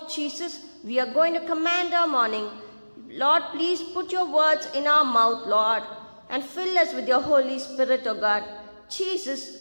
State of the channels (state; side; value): inverted; both; correlation -1.00